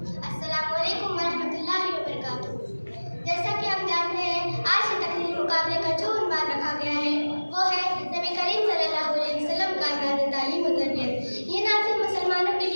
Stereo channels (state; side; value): inverted; both; correlation -1.00